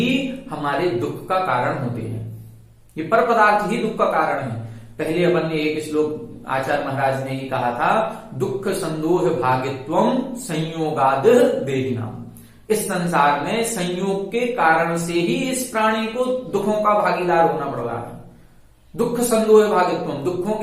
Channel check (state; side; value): identical; both; correlation 1.00